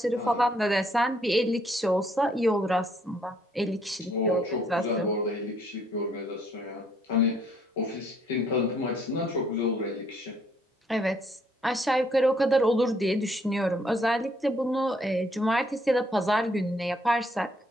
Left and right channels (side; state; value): both; normal; correlation 0.67